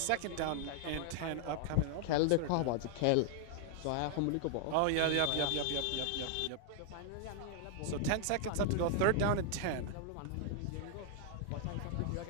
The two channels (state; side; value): different; both; correlation 0.00